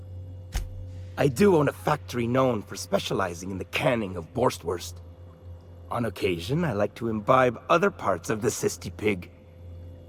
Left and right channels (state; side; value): identical; both; correlation 1.00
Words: I do own a factory known for specializing in the canning of Borstwurst. On occasion, I like to imbibe other parts of the cysty pig.